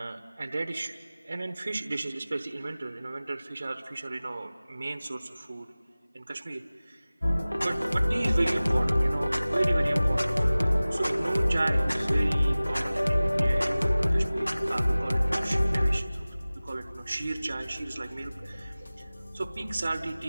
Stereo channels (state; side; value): inverted; both; correlation -0.98